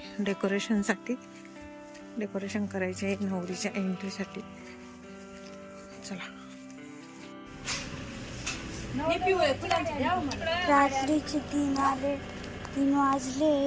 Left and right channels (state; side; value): identical; both; correlation 1.00